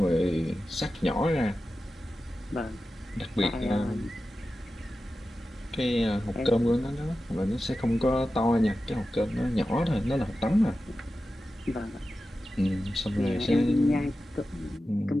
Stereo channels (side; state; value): both; normal; correlation 0.93